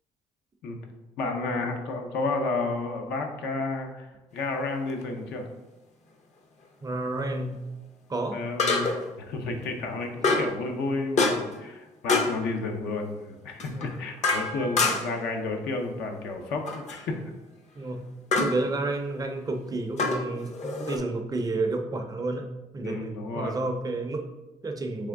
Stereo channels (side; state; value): both; normal; correlation 0.49